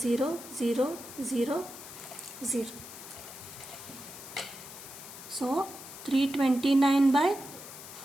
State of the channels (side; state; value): left; noise; hiss, 14 dB below the sound